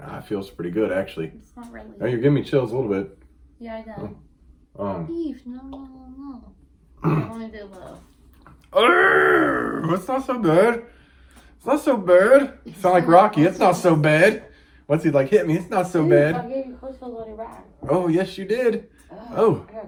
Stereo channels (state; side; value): identical; both; correlation 1.00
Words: feels pretty good actually. It's not really. Oh, you're giving me chills a little bit. Yeah, I know. Beef, no. I want to do love. It's not so bad. It's not so bad. You sound like Rocky. It's not so bad. What's he like? Hit me. It's not so bad. I gave you close to a bloody rat. Oh, yes, you did. Oh. I gotta